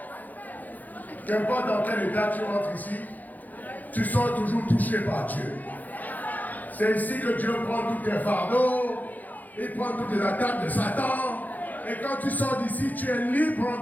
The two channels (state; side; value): late; right; 0.082 ms